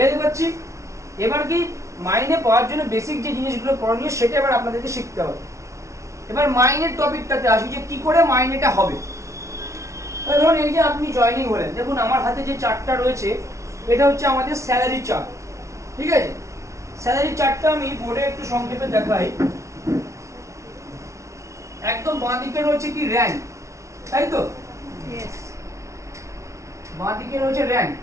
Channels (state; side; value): late; left; 0.14 ms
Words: পারছি? এবার কি মাইনে পাওয়ার জন্য বেসিক যে জিনিসগুলো করণীয় সেটা এবার আপনাদেরকে শিখতে হবে। এবার মাইনের টপিকটাতে আসি যে কি করে মাইনেটা হবে। ধরুন এই যে আপনি জয়েনিং হলেন, দেখুন আমার হাতে যে চার্টটা রয়েছে এটা হচ্ছে আমাদের স্যালারি চার্ট, ঠিক আছে। স্যালারি চার্টটা আমি বোর্ডে একটু সংক্ষেপে দেখাই। একদম বাঁ দিকে রয়েছে কি র্যাঙ্ক, তাই তো? বাঁ দিকে রয়েছে র্যাঙ্ক,